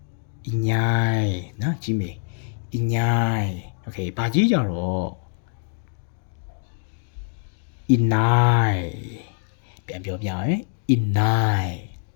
inyai နော်ကြီးမေ inyai okay ဘာကြီးကြတော့ inai ပြန်ပြောပြမယ် inai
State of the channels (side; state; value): right; silent; 62 dB below the other